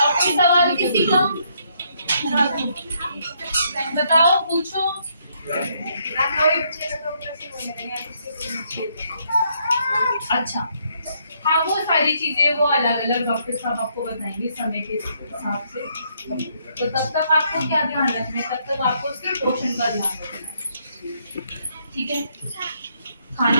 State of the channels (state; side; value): inverted; both; correlation -0.72